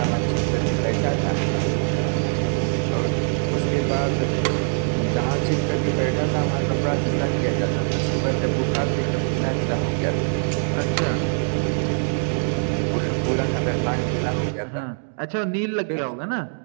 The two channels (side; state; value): left; silent; 63 dB below the other